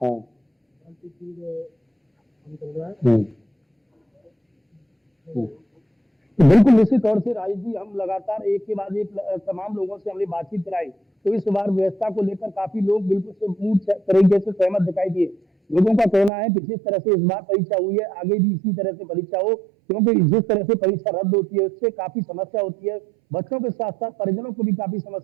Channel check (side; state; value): left; drops out; at 16.3 s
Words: हाँ हम्म, हम्म। तो बिल्कुल निश्चित तौर से राजेश जी, हम लगातार एक के बाद एक तमाम लोगों से हमने बातचीत कराई, तो इस बार व्यवस्था को लेकर काफी लोग बिल्कुल से पूर्ण तरीके से सहमत दिखाई दिए। लोगों का कहना है कि जिस तरह से इस बार परीक्षा हुई है, आगे भी इसी तरह से परीक्षा हो, क्योंकि जिस तरह से परीक्षा रद्द होती है उससे काफी समस्या होती है, बच्चों के साथ साथ परिजनों को भी काफी